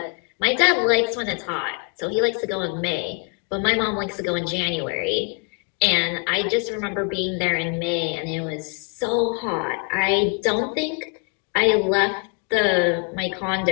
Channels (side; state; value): right; quieter; 38.1 dB